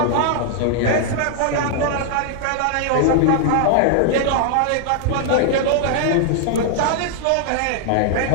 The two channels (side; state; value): both; different; correlation 0.00